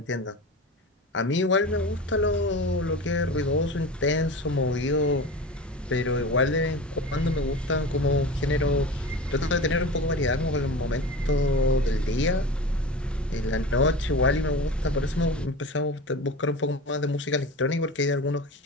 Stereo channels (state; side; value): normal; both; correlation 0.31